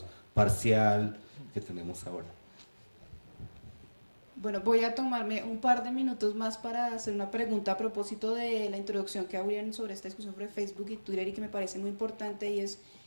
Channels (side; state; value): both; inverted; correlation -1.00